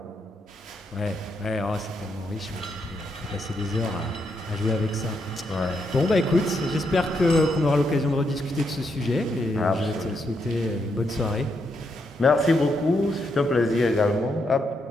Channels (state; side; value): normal; both; correlation 0.80